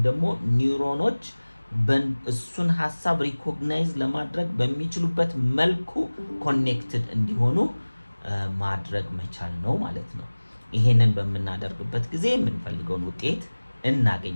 ደግሞ ኒውሮኖች እሱን ሐሳብ ሪኮግናይዝ ለማድረግ በሚችሉበት መልኩ ኮኔክትድ እንዲሆኑ ማድረግ መቻል ነው ማለት ነው። ይሄንን በምናደርግበት ጊዜ የምንፈልገውን ውጤት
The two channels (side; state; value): both; inverted; correlation -1.00